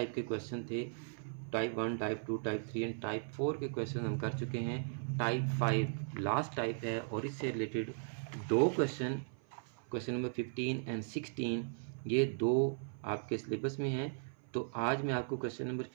के क्वेश्चन थे। Type 1, type 2, type 3 and type 4 के क्वेश्चन हम कर चुके हैं। टाइप 5 लास्ट टाइप है और इससे रिलेटेड 2 क्वेश्चन नंबर 15 एंड 16 ये 2 आपके सिलेबस में हैं। तो आज मैं आपको क्वेश्चन नंबर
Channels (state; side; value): silent; left; 53 dB below the other